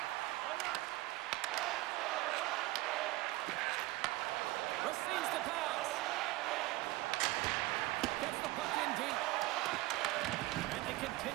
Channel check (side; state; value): left; quieter; 19.2 dB